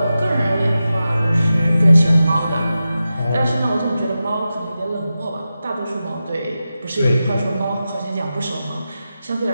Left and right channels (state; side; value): inverted; both; correlation -0.92